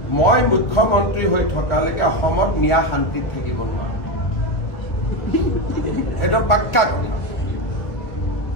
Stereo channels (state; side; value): late; right; 1.4 ms